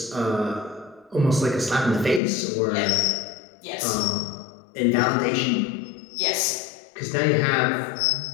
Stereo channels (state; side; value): drops out; right; at 2.2 s